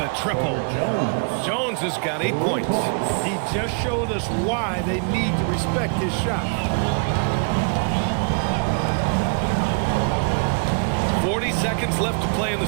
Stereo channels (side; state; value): left; quieter; 39.8 dB